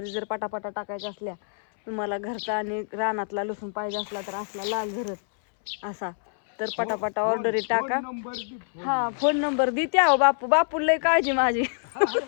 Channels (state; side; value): silent; right; 61 dB below the other